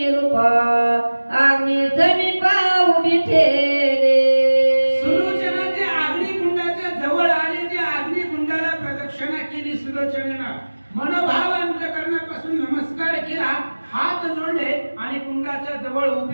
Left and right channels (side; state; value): both; inverted; correlation -1.00